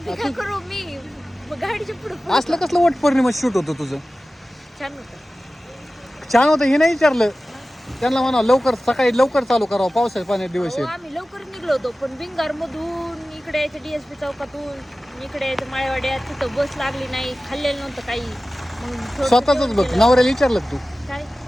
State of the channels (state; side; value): normal; both; correlation 0.96